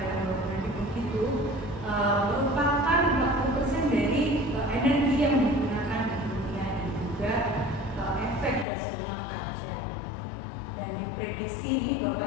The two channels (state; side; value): drops out; right; at 8.7 s